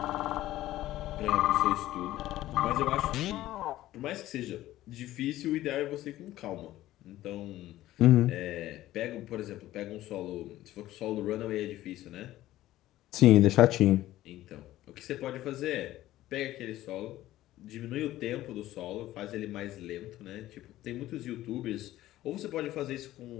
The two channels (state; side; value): quieter; right; 15.0 dB